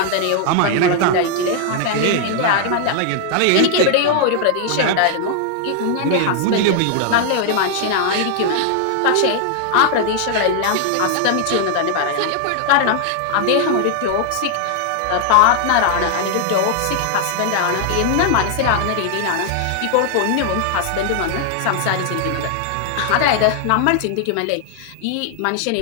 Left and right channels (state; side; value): different; both; correlation 0.00